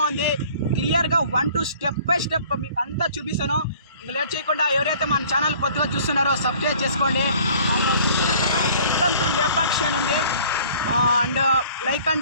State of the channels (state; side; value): inverted; both; correlation -0.52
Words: ఉంది. క్లియర్గా 1 to స్టెప్ బై స్టెప్ మీకు అంతా చూపిస్తాను. ఇంకా లేట్ చేయకుండా ఎవరైతే మన ఛానల్ కొత్తగా చూస్తున్నారో సబ్స్క్రైబ్ చేసుకోండి. వెల్కమ్ టు లేపాక్షి అని ఉంది. అండ్ లైక్